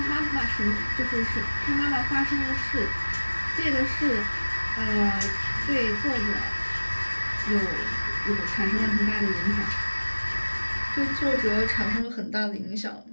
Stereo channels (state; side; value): inverted; both; correlation -1.00